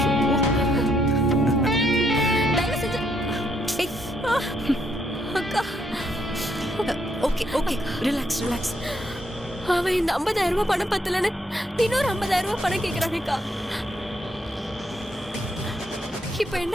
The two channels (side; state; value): both; normal; correlation 0.73